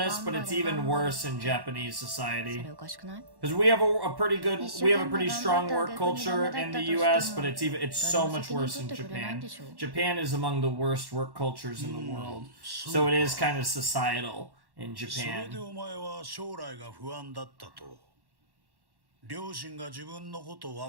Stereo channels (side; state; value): left; late; 1.1 ms